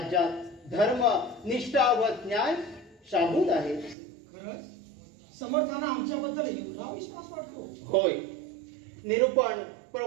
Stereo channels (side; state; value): left; drops out; at 4.0 s